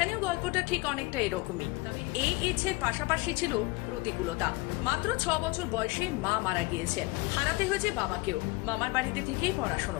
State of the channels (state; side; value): quieter; right; 23.4 dB